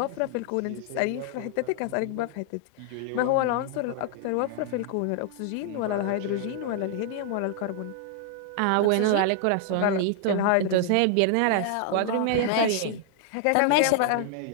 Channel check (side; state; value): both; different; correlation 0.00